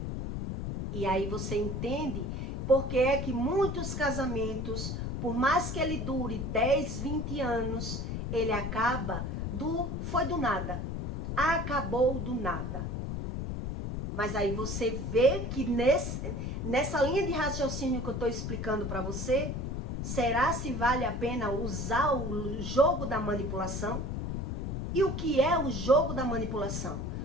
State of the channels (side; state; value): left; noise; rumble, 3 dB below the sound